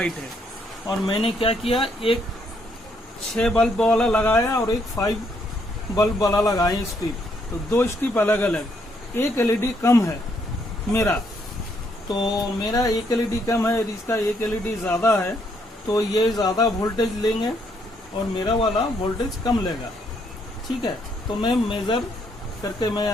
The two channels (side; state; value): both; normal; correlation 0.72